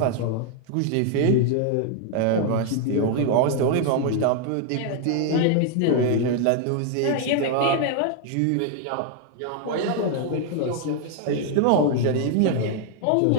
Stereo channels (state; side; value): different; both; correlation 0.00